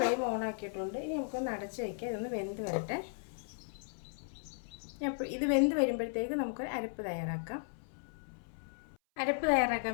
ഓൺ ആക്കിയിട്ടുണ്ട്. ഇനി നമുക്കൊന്ന് അടച്ച് വയ്ക്കാം. ഇതൊന്ന് വെന്ത് വരട്ടെ. ഇത് വെന്ത് വരുമ്പോഴത്തേക്ക് നമുക്ക് അരപ്പ് തയ്യാറാക്കാം. അരപ്പ്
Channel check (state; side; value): silent; right; 54 dB below the other